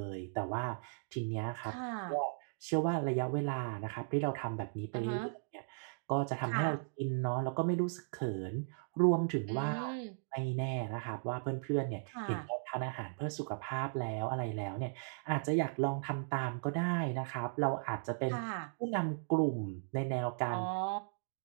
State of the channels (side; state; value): left; silent; digital silence